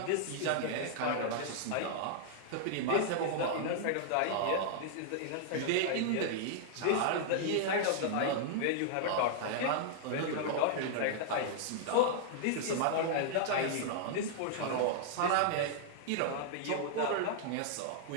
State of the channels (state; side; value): different; both; correlation -0.01